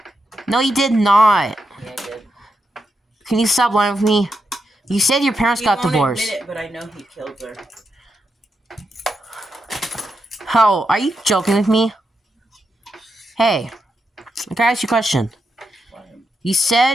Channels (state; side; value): normal; both; correlation 0.85